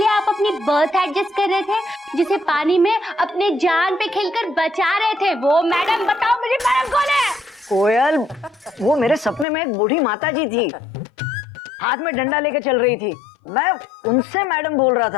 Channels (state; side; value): drops out; right; at 9.5 s